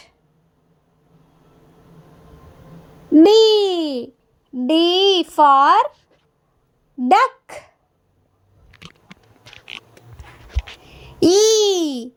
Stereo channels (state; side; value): identical; both; correlation 1.00